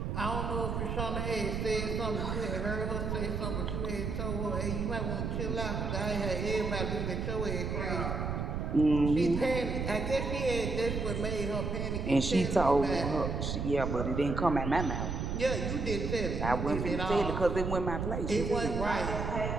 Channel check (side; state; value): right; noise; rumble, 2 dB below the sound